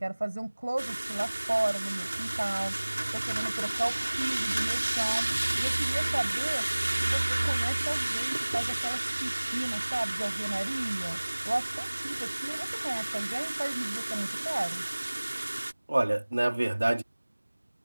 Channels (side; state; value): both; inverted; correlation -1.00